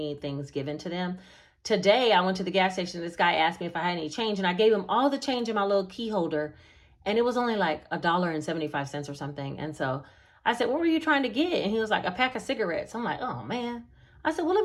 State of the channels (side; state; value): both; identical; correlation 1.00